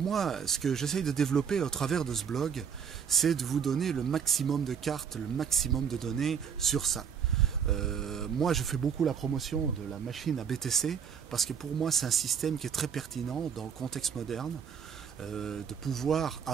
ce que j'essaye de développer au travers de ce blog, c'est de vous donner le maximum de cartes, le maximum de données sur ça. Moi, je fais beaucoup la promotion de la machine à BTC parce que pour moi, c'est un système qui est très pertinent dans le contexte moderne de pouvoir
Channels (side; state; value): left; quieter; 7.3 dB